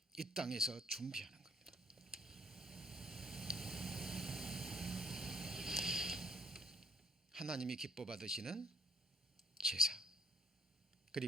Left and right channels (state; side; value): normal; both; correlation 0.63